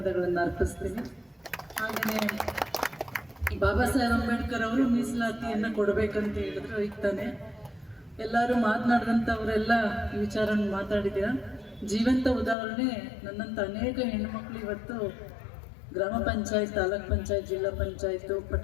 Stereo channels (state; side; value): drops out; right; at 12.6 s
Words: ಅರ್ಪಿಸ್ತೀನಿ. ಹಾಗೆಯೇ ಬಾಬಾ ಸಾಹೇಬ್ ಅಂಬೇಡ್ಕರ್ ಅವರು ಮೀಸಲಾತಿಯನ್ನು ಕೊಡಬೇಕಂತ ಹೇಳಿದ್ರು. ಈಗ ತಾನೆ ಎಲ್ಲರೂ ಮಾತನಾಡಿದಂಥವರೆಲ್ಲ ವಿಚಾರವನ್ನು ಮಾತಾಡಿದ್ದೀರ. ಜೀವಂತ ಉದಾಹರಣೆ ನನ್ನಂಥ ಅನೇಕ ಹೆಣ್ಣುಮಕ್ಕಳು ಇವತ್ತು ಗ್ರಾಮ ಪಂಚಾಯತ್, ತಾಲೂಕ್ ಪಂಚಾಯತ್, ಜಿಲ್ಲಾ ಪಂಚಾಯತ್,